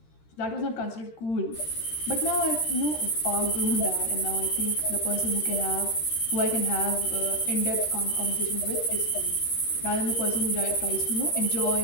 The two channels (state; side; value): late; right; 13 ms